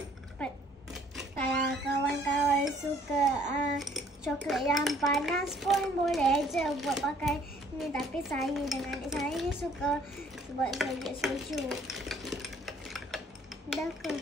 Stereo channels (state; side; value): normal; both; correlation 0.59